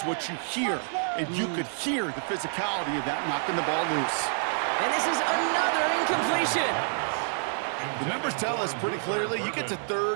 what you hear. And you could hear the physicality of that knocking the ball loose. And this is another incompletion. The numbers tell us pretty clearly, you get to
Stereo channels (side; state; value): left; silent; digital silence